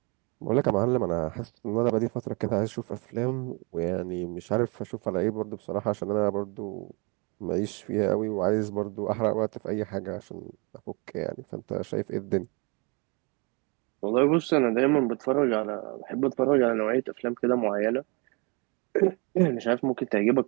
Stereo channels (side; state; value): left; quieter; 30.9 dB